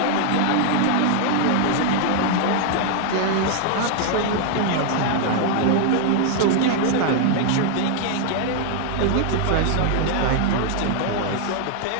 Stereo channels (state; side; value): different; both; correlation 0.00